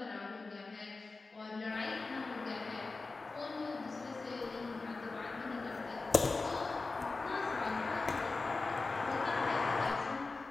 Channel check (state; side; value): quieter; right; 3.8 dB